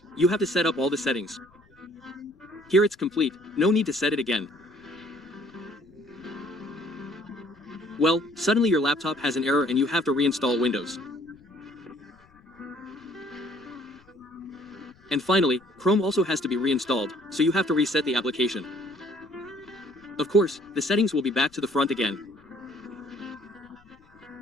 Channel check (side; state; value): left; noise; rumble, 29 dB below the sound